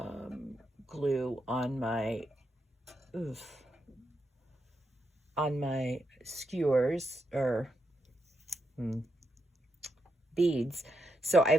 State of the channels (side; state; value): both; normal; correlation 0.83